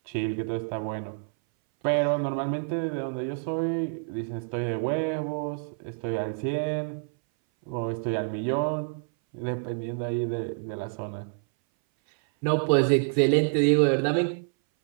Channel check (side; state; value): left; silent; 59 dB below the other